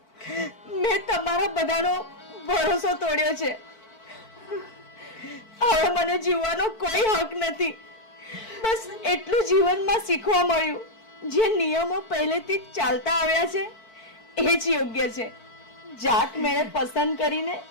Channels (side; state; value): right; late; 4.5 ms